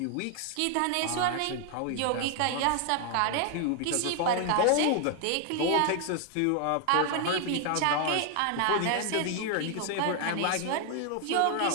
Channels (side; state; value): both; different; correlation 0.00